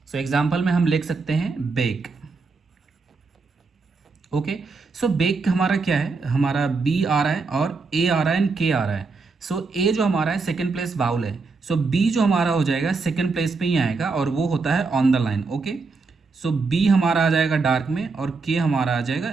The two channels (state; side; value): quieter; left; 4.2 dB